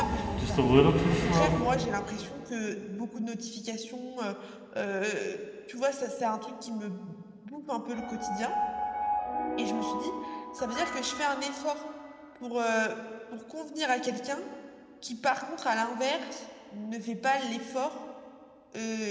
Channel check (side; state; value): both; identical; correlation 1.00